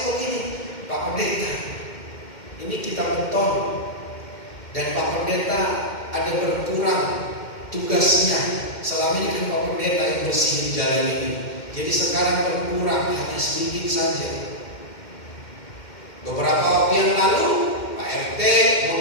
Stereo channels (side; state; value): right; late; 2.1 ms